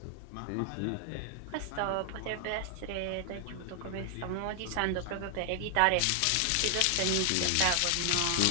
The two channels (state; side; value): different; both; correlation 0.00